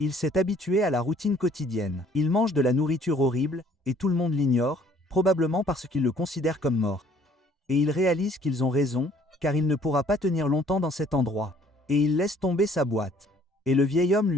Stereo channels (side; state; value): both; normal; correlation 0.59